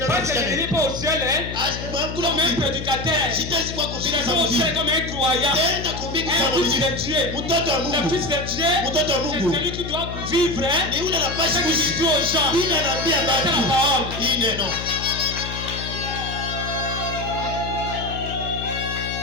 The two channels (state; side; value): noise; left; hum, 8 dB below the sound